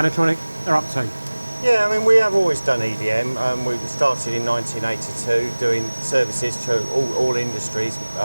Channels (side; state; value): both; inverted; correlation -1.00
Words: Anotronic are up to? Yeah, I mean, we have always done EDM. We started in 1982 doing services to all industries,